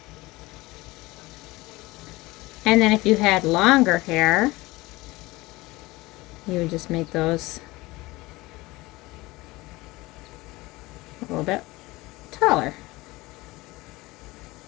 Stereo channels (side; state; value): right; quieter; 20.9 dB